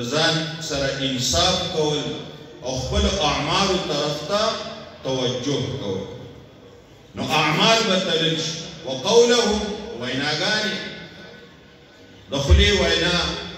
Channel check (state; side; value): identical; both; correlation 1.00